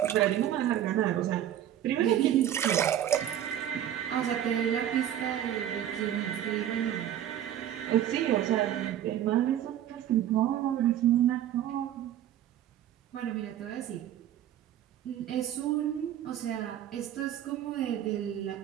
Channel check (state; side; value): quieter; left; 11.1 dB